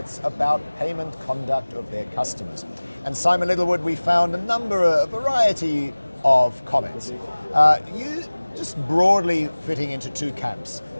about payment conduct of their customers. And Simon Littlewood, we found a variety of comments. You just broadly fitting into two camps.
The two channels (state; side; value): inverted; both; correlation -1.00